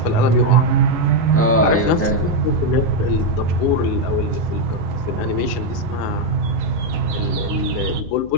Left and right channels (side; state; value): left; noise; hum, 18 dB below the sound